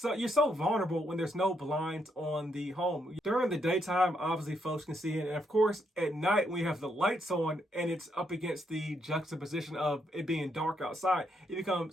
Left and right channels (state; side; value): normal; both; correlation 0.77